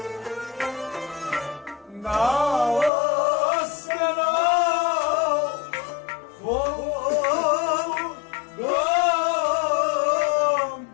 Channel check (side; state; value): right; drops out; at 2.9 s